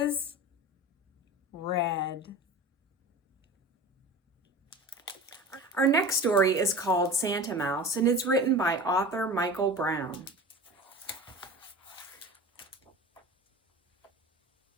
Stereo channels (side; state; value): both; normal; correlation 0.34